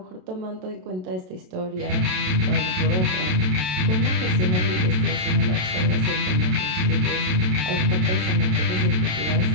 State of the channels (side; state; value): left; late; 27 ms